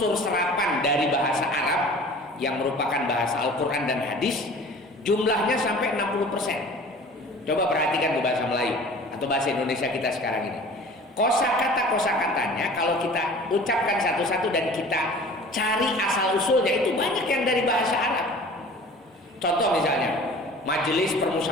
serapan dari bahasa Arab yang merupakan bahasa Al-Quran dan hadis, jumlahnya sampai 60%. Coba perhatikan bahasa Melayu atau bahasa Indonesia kita sekarang ini. Kosakatanya kalau kita ucapkan satu-satu dan kita cari asal usulnya itu banyak yang dari bahasa Arab. Contoh misalnya Majelis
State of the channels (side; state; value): both; normal; correlation 0.44